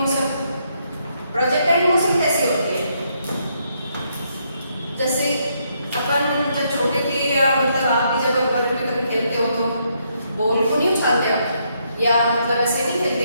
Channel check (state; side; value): inverted; both; correlation -0.75